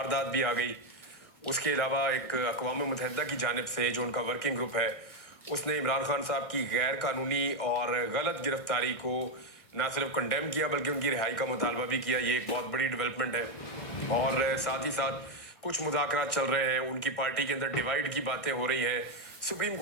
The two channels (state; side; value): late; right; 1.6 ms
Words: भी आ गई। उसके अलावा एक अक़वाम मुत्तहिदा की जानिब से जो उनका वर्किंग ग्रुप है उसने इमरान खान साहब की गैर कानूनी और गलत गिरफ्तारी को ना सिर्फ कंडेम किया बल्कि उनकी रिहाई का मुतालबा भी किया। ये एक बहुत बड़ी डेवलपमेंट है। और साथ ही साथ कुछ मुज़ाकरात चल रहे हैं, उनकी पार्टी के अंदर डिवाइड की बातें हो रही हैं। सुप्रीम